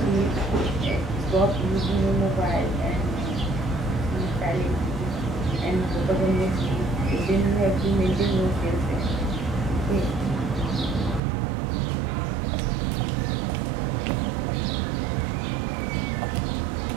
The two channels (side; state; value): left; drops out; at 11.2 s